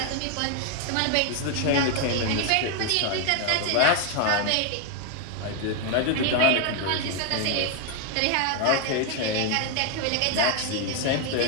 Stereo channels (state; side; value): different; both; correlation 0.01